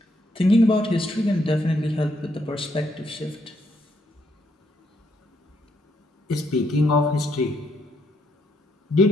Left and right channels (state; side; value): normal; both; correlation 0.75